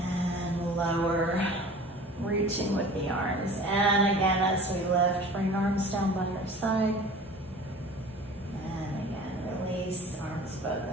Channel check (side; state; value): both; normal; correlation 0.42